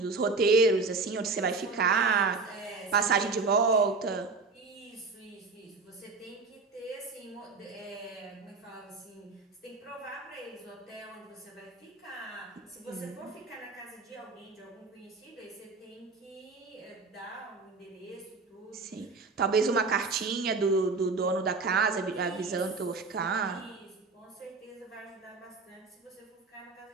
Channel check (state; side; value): quieter; left; 4.1 dB